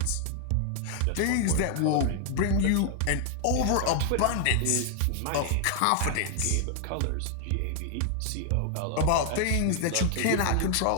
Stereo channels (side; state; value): both; different; correlation 0.00